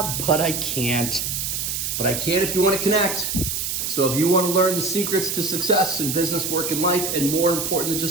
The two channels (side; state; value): right; noise; hiss, 2 dB below the sound